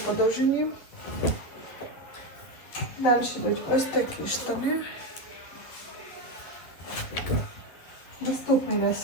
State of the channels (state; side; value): late; right; 11 ms